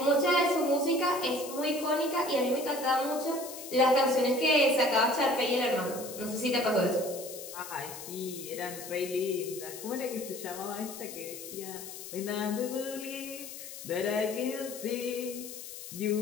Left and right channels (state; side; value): noise; left; hiss, 11 dB below the sound